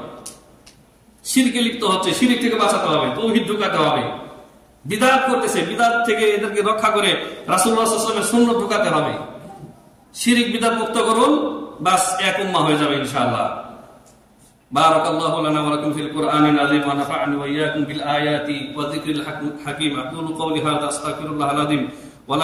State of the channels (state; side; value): identical; both; correlation 1.00